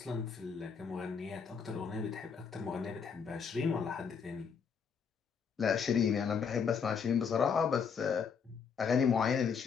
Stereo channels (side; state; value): right; quieter; 6.3 dB